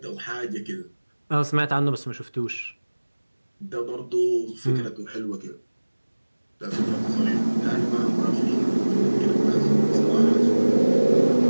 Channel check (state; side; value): inverted; both; correlation -1.00